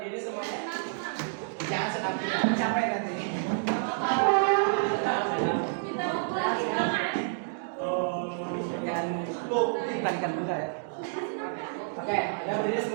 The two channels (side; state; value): left; silent; digital silence